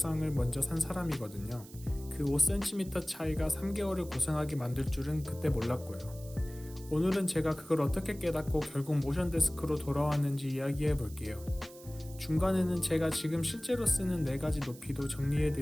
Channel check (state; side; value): noise; right; hiss, 19 dB below the sound